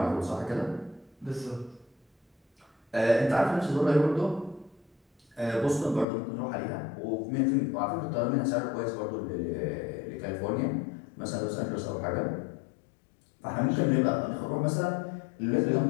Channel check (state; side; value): drops out; right; at 6.1 s